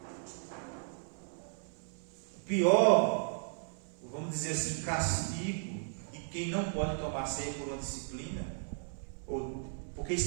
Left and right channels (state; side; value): silent; left; 54 dB below the other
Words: O pior, vamos dizer assim, castigo de quem não pode tomar ceia por uma disciplina, ou porque